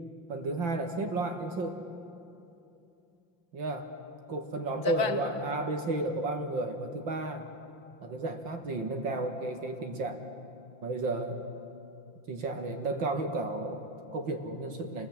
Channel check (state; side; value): late; left; 5.8 ms